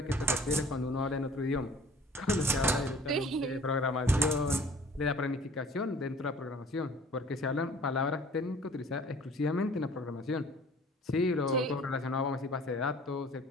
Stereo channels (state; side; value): normal; both; correlation 0.51